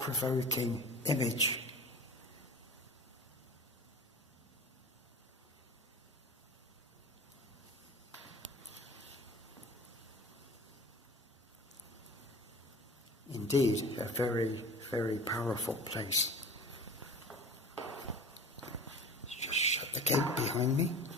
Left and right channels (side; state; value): both; normal; correlation 0.37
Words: image. Indeed, a very, very powerful place. Let's just shut the gate behind me.